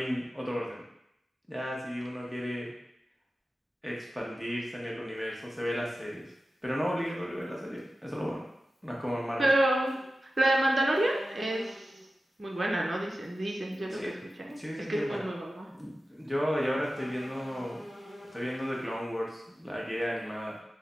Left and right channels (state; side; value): normal; both; correlation 0.94